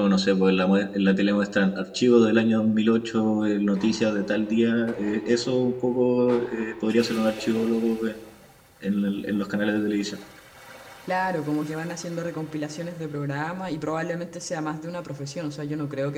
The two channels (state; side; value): identical; both; correlation 1.00